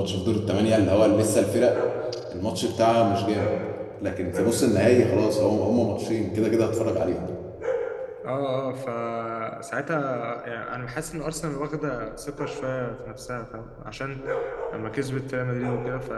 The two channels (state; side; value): identical; both; correlation 1.00